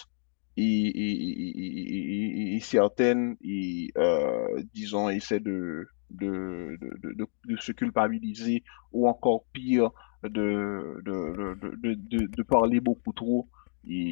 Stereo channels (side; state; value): right; silent; digital silence